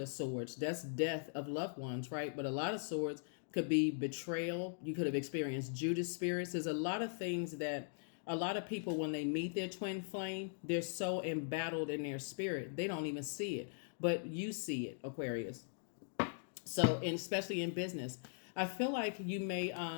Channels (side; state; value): right; silent; digital silence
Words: swords. That's death of loved ones, right? But a lot of swords could be betrayal. You could have experienced Judas spirits. There's a lot of things that a lot of people, when they meet their twin flame, they're so embattled in their spirit, they don't even see it. But you see it, Aquarius. So, and especially in business, I feel like you may,